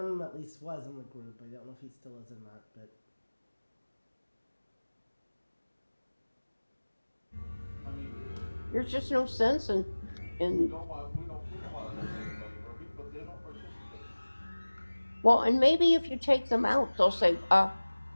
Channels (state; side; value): inverted; both; correlation -1.00